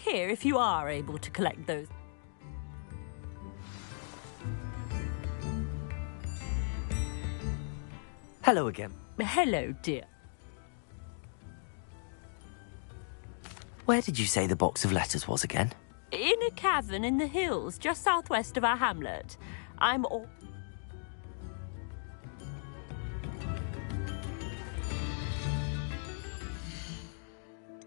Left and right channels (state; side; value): silent; right; digital silence